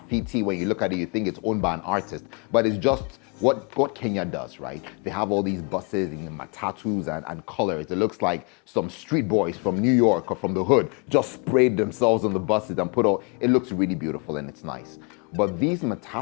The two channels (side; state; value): right; quieter; 33.3 dB